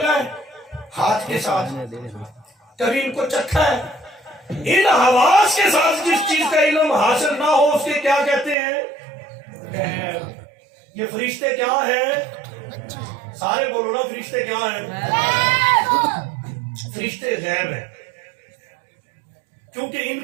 ہے ہاتھ کے ساتھ، کبھی ان کو چکھا ہے۔ ان حواس کے ساتھ جس چیز کا علم حاصل نہ ہو اس کے کیا کہتے ہیں؟ غیب۔ یہ فرشتے کیا ہیں؟ سارے بولو نا، فرشتے کیا ہیں؟ فرشتے غیب ہیں، کیونکہ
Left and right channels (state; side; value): drops out; left; at 8.6 s